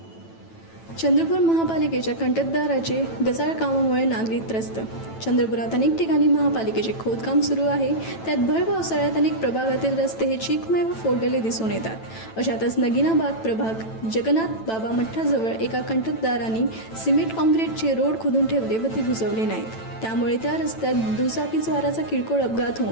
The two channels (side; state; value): right; late; 9.1 ms